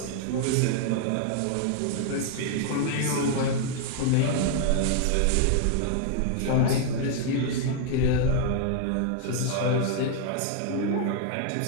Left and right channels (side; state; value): both; different; correlation 0.00